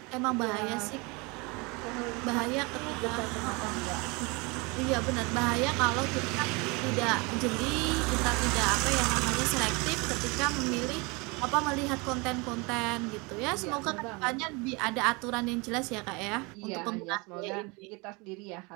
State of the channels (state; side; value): quieter; left; 27.8 dB